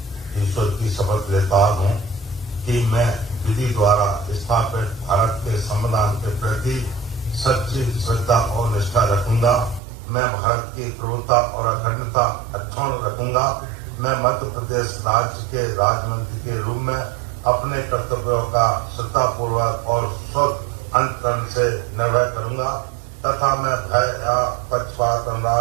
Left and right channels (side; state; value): left; drops out; at 9.8 s